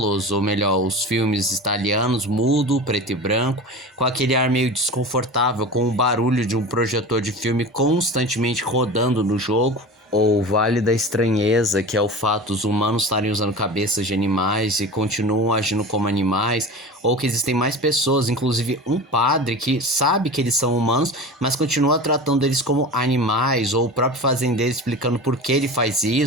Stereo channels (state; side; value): normal; both; correlation 0.32